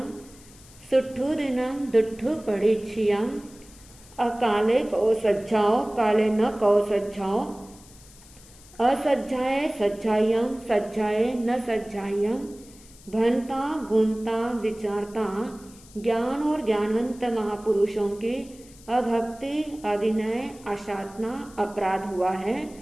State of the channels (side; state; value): left; noise; hiss, 23 dB below the sound